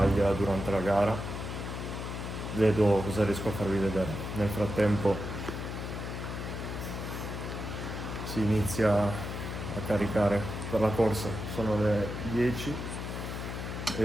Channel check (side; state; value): left; noise; hum, 6 dB below the sound